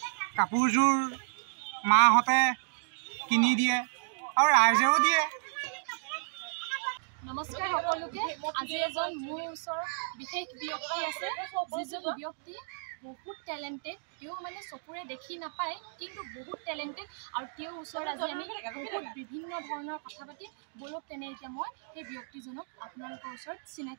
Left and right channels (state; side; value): silent; left; digital silence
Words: কাপোৰযোৰ মাহঁতে কিনি দিয়ে আৰু ৰাইজেও দিয়ে। নমস্কাৰ সকলোকে। আজি এজন মোৰ ওচৰত বিশেষ ব্যক্তি আছে, যিজন ব্যক্তি বহুত টেলেণ্টেড। তেওঁ মানে চকুৰে দেখি নাপায় কিন্তু বহুত টেলেণ্টেড, আৰু তেওঁৰ ওচৰত আজি আমি বহুত বিভিন্ন ধৰণৰ কথা পাতি বলক তেনে এতিয়া মই সেই ব্যক্তিজনক আপোনালোকৰ ওচৰত